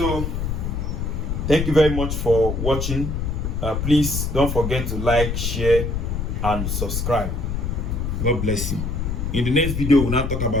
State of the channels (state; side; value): noise; left; rumble, 2 dB below the sound